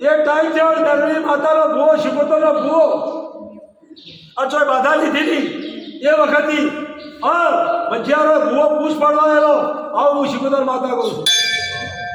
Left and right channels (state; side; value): identical; both; correlation 1.00